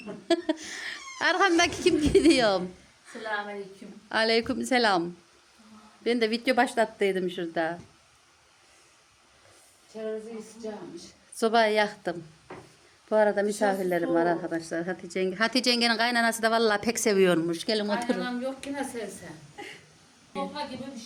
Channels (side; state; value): both; identical; correlation 1.00